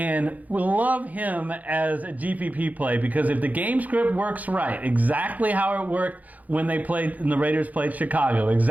we love him as a GPP play because if the game script works right, exactly how it worked when they played, and the Raiders played Chicago,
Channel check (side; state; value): left; late; 0.077 ms